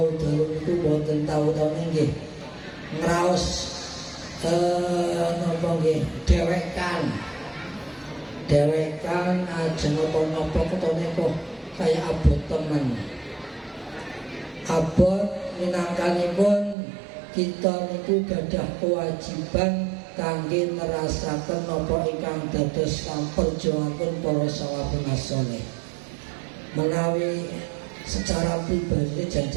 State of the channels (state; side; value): drops out; left; at 16.8 s